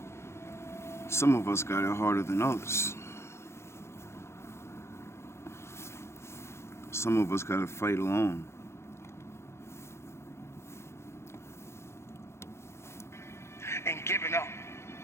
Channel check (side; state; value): right; late; 0.13 ms